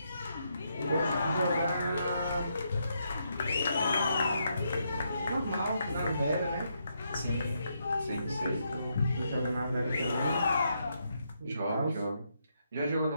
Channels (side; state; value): both; inverted; correlation -0.79